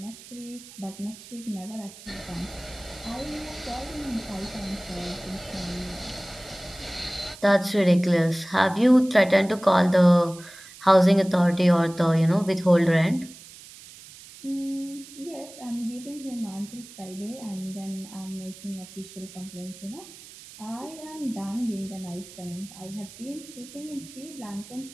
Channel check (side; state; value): right; noise; hiss, 18 dB below the sound